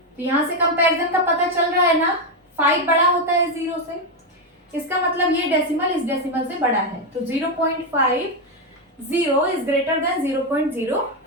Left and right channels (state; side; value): normal; both; correlation 0.06